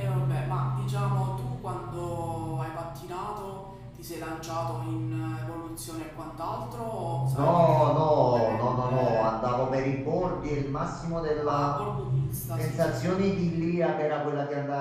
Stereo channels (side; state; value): both; identical; correlation 1.00